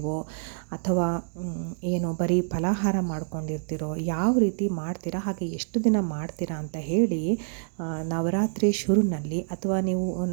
ಅಥವಾ ಏನು ಬರೀ ಫಲಾಹಾರ ಮಾಡ್ಕೊಂಡಿರ್ತೀರೋ, ಯಾವ ರೀತಿ ಮಾಡ್ತೀರಾ, ಹಾಗೆ ಎಷ್ಟು ದಿನ ಮಾಡ್ತೀರಾ ಅಂತ ಹೇಳಿ ನವರಾತ್ರಿ ಶುರುನಲ್ಲಿ ಅಥವಾ ನೀವು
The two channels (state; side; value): silent; left; digital silence